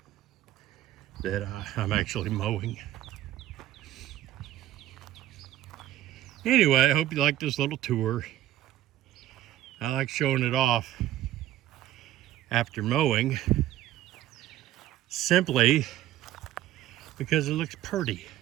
that I'm actually mowing. Anyway, I hope you like this little tour. I like showing it off after mowing, simply because it looks pretty.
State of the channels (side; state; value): left; quieter; 13.6 dB